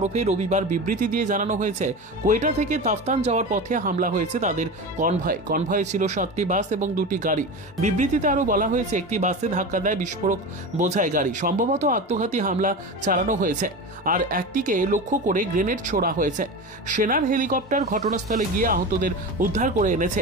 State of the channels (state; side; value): normal; both; correlation 0.26